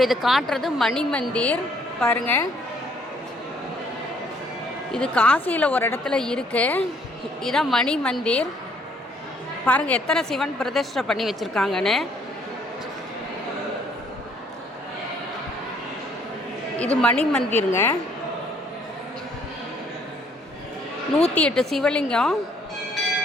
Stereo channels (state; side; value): normal; both; correlation 0.64